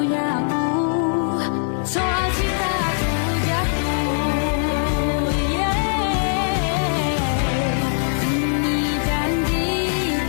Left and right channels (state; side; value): silent; right; 59 dB below the other